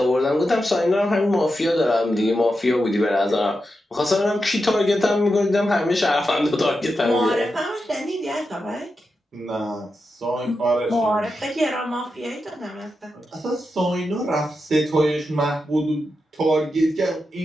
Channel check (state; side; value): normal; both; correlation 0.88